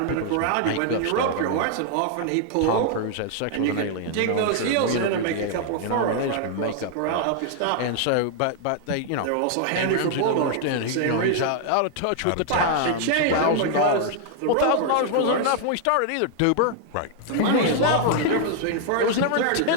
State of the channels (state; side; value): different; both; correlation 0.00